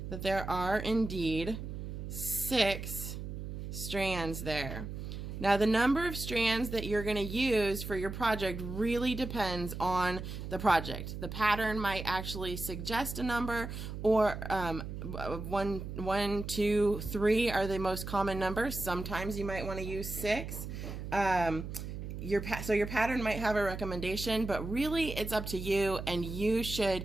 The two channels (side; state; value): right; noise; hum, 7 dB below the sound